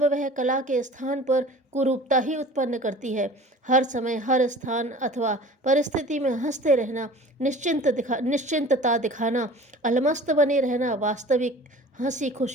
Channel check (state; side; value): normal; both; correlation 0.43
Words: वह कला के स्थान पर कुरूपता ही उत्पन्न करती है। हर समय हर स्थान अथवा परिस्थिति में हंसते रहना, निश्चिंतता दिखाना, अलमस्त बने रहना वास्तविक हंसी